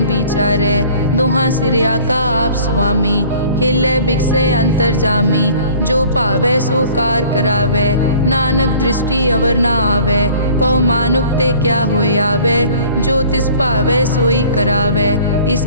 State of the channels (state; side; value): inverted; both; correlation -0.50